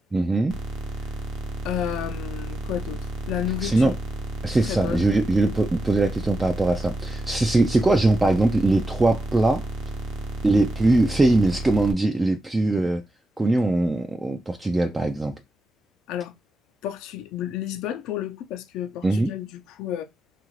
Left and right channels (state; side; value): normal; both; correlation 0.87